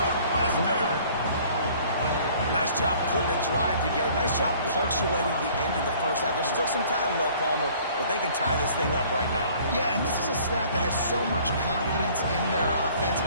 Nice job putting a drive together. Nice job punctuating the end of the first half. There's still some time left, Palmer, but they can tie this thing up right now. Yeah, and this is a staff that has so much confidence in their offense.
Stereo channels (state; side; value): inverted; both; correlation -0.54